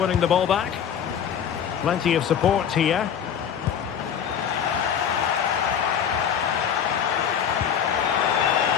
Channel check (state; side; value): quieter; right; 8.3 dB